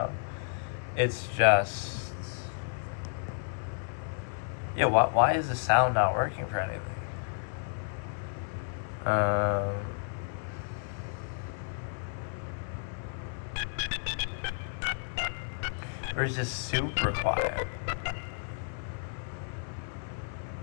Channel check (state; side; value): silent; right; 56 dB below the other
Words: it's just, yeah, why is the sound not working for anything? Or it's just super quiet.